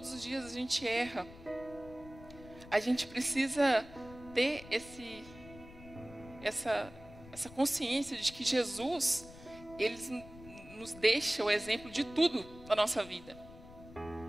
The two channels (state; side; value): noise; left; rumble, 18 dB below the sound